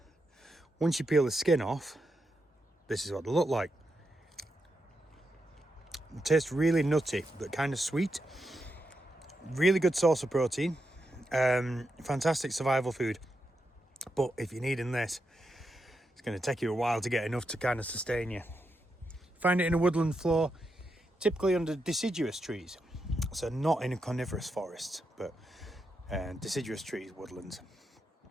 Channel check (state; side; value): normal; both; correlation 0.85